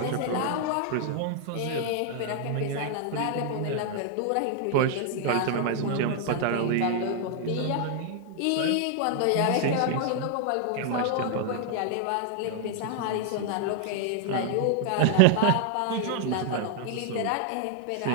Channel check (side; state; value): both; different; correlation 0.00